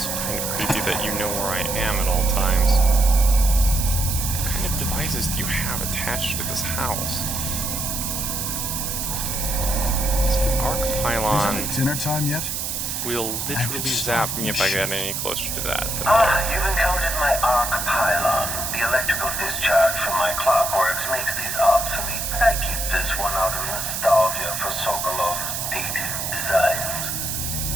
kind of creepy that you know where I am at all times. What kind of devices do you have attached to this house? So the arc pylon Isn't it dinner time yet? will literally zap me if I get any closer to that. You've encountered my arc pylon. The electrical discharge from my clockworks makes these obsolete, but I keep this one out of nostalgia for Sokolov's dated designs.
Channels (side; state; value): right; noise; hiss, 3 dB below the sound